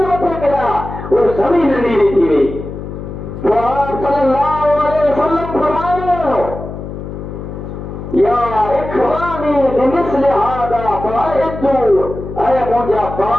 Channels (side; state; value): left; noise; hum, 9 dB below the sound